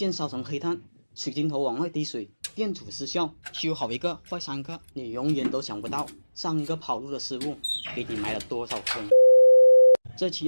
烧成黑炭，水晶头往外滴水，电阻失效，修好一个坏3个，你永远都想不到上个跑路的师傅给你埋了多少坑。这期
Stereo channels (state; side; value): inverted; both; correlation -1.00